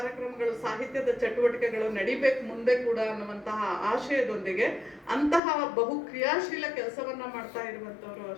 ಸಾಹಿತ್ಯದ ಚಟುವಟಿಕೆಗಳು ನಡಿಬೇಕು ಮುಂದೆ ಕೂಡ ಅನ್ನುವಂತಹ ಆಶಯದೊಂದಿಗೆ ಅಂತಹ ಬಹು ಕ್ರಿಯಾಶೀಲ ಕೆಲಸವನ್ನ ಮಾಡ್ತಾ ಇರುವಂತವ್ರು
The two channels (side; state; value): right; drops out; at 5.4 s